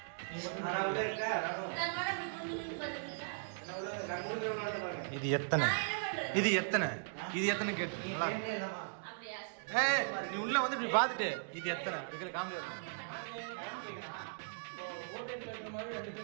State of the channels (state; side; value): silent; left; digital silence